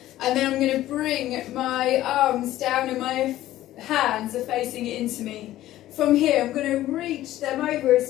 and then I'm going to bring my arms down and my hands are facing it into me. From here I'm going to reach them over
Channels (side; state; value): right; quieter; 14.5 dB